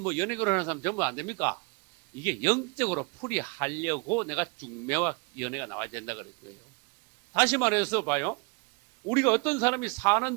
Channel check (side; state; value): left; quieter; 30.7 dB